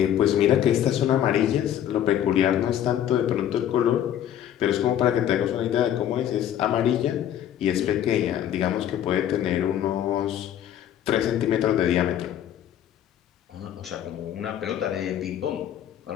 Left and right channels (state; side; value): quieter; right; 10.6 dB